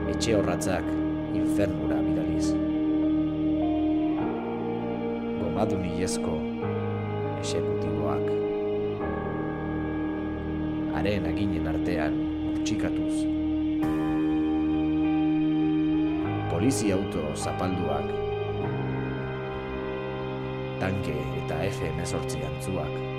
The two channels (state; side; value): identical; both; correlation 1.00